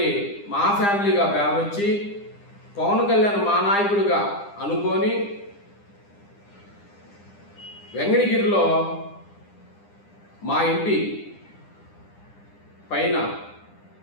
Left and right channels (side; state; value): right; late; 9.9 ms